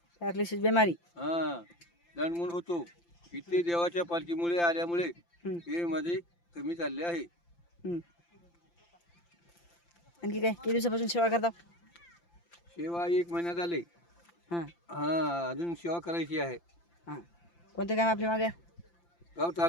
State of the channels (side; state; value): right; late; 5.8 ms